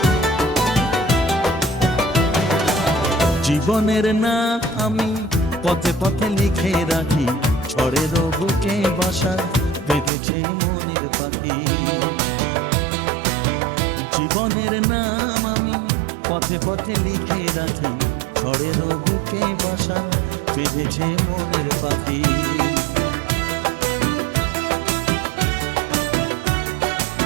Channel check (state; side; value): drops out; left; at 10.1 s